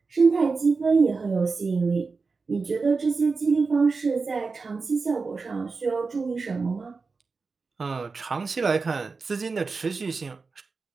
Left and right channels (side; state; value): left; quieter; 4.4 dB